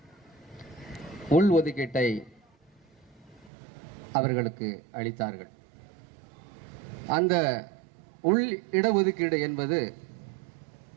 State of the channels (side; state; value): left; drops out; at 3.5 s